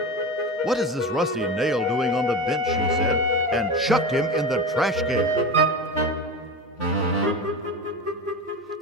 "What is this rusty nail doing on the bench?" she said, and chucked him in the trash can.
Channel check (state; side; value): normal; both; correlation 0.26